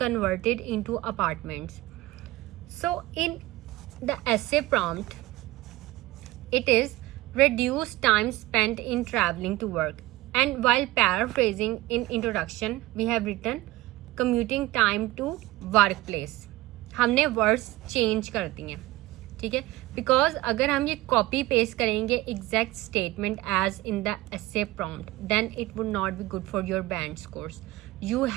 into apartments. So, in the essay prompt, it is reduce time spent in traveling to work. And while paraphrasing in introduction, we have written commuting time to workplace. हमने words change कर दिए हैं, ठीक है, because अगर हम ये copy paste करेंगे exact statement as in the essay prompt then it would not be good for your band scores. You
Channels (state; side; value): quieter; left; 17.6 dB